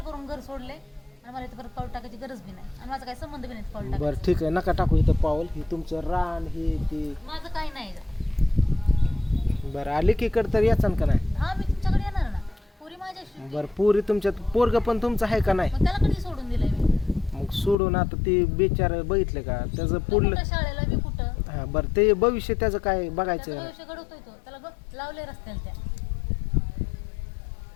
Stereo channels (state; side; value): drops out; right; at 17.8 s